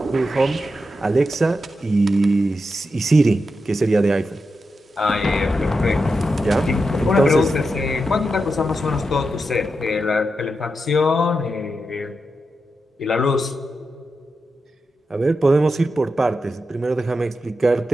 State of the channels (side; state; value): both; normal; correlation 0.88